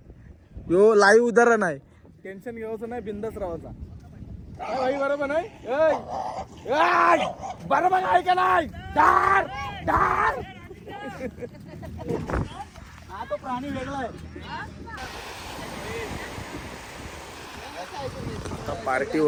यो लाईव्ह उदाहरण आहे. टेन्शन घ्यायचं नाही, बिंदास राहायचा. काय भाई, बरोबर नाही? बरोबर आहे का नाही? डार डार. हा तो प्राणी वेगळा आहे. पार्टी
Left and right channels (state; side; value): identical; both; correlation 1.00